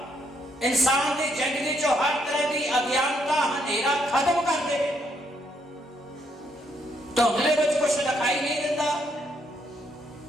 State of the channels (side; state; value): both; normal; correlation 0.73